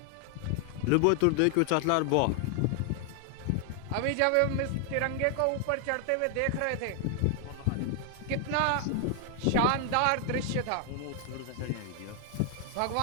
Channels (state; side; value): different; both; correlation 0.00